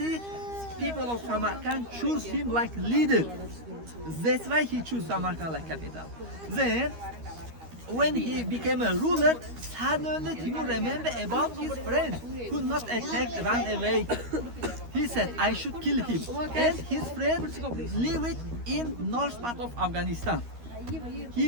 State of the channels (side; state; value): left; late; 13 ms